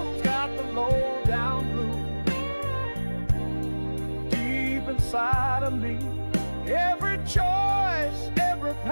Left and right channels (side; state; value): both; inverted; correlation -1.00